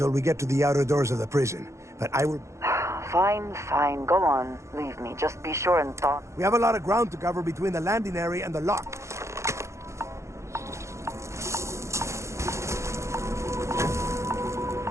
we get to the outer doors of the prison, but I will... Fine, go on. Leave me. Just be sure and thaw. We have a lot of ground to cover between the landing area and the lock.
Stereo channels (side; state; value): left; late; 0.14 ms